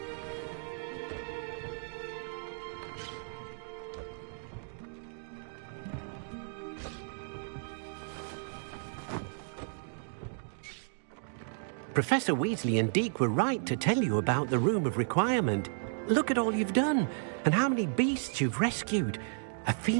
Professor Weasley and Deke were right to tell you about the Room of Requirement. Look at all you've done, and how many beasts you've rescued. A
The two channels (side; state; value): left; silent; digital silence